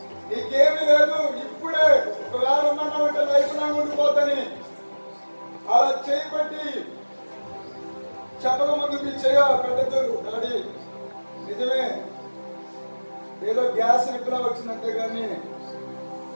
నీకేమీ లేదు, ఇప్పుడే ఒకవేళ ఉన్నామంటే లైఫ్ లాంగ్ ఉండిపోతాని అలా చేయబట్టి చెప్పక ముందు మీ చేయ పెట్టద్దు. డాడీ నిజమే, ఏదో గ్యాస్ నిప్పులా వచ్చిందంతే కానీ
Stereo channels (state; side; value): inverted; both; correlation -1.00